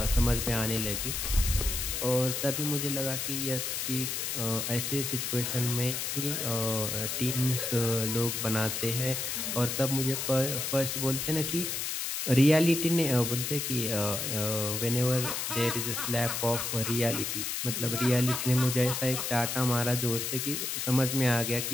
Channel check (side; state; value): left; noise; hiss, 2 dB below the sound